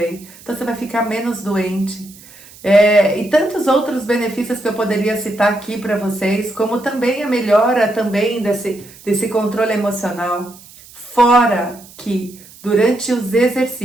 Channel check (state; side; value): noise; right; hiss, 22 dB below the sound